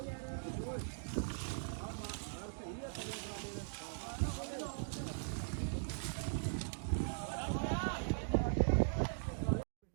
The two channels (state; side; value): silent; left; digital silence